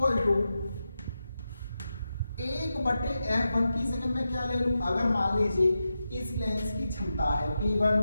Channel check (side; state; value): both; inverted; correlation -0.89